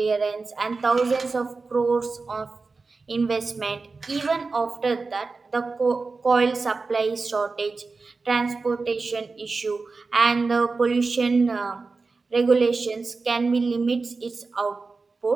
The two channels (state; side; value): quieter; left; 4.1 dB